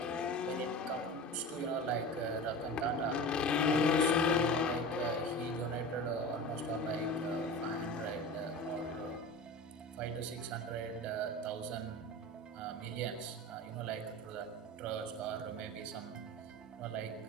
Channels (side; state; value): both; normal; correlation 0.32